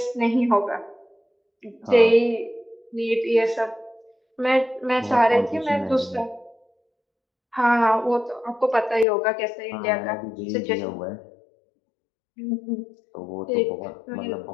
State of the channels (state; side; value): drops out; right; at 9.1 s